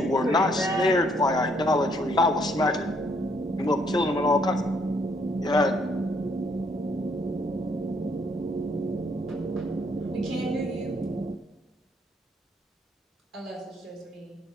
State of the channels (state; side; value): normal; both; correlation 0.68